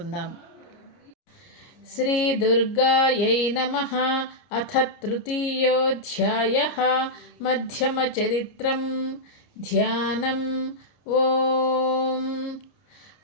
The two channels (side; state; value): right; late; 29 ms